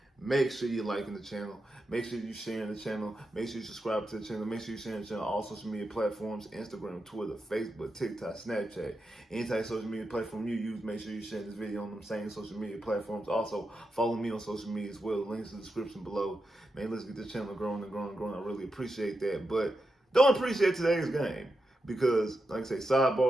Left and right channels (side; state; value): both; normal; correlation 0.88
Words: make sure you're liking the channel. Make sure you're sharing the channel. Make sure you subscribe to the channel. Make sure you're sharing the channel on all social media platforms: Instagram, Twitter, Facebook, TikTok, Snapchat. Any type of social media platform you use, make sure you share this video on them same social media platforms. Also, follow me on social media as well. Links in the description below. Man, let's get this channel growing and growing and growing. I really appreciate that. But don't appreciate today's game because, like I say,